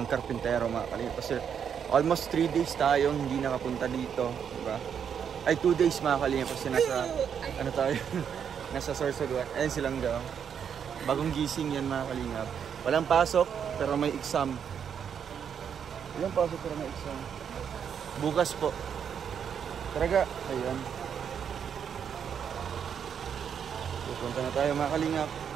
karpintero mga kalingap. Kasi almost 3 days tayong hindi nakapunta dito, diba? Ay 2 days mga kalingap kasi nasa ano tayo nasa Sorsogon. Ayun silang daw. Bagong gising yan mga kalingap. Walang pasok pero may exam. Walang pasok pero may exam. Bukas po. Talaga, ayun. Pupunta na tayo mga kalingap.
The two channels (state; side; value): quieter; left; 7.8 dB